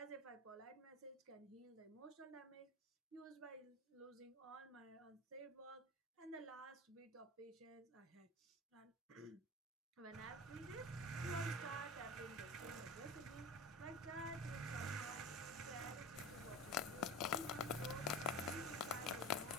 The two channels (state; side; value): normal; both; correlation 0.32